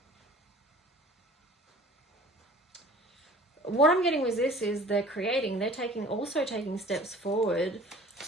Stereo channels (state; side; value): normal; both; correlation 0.47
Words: what I'm getting with this is they're also taking steps forward.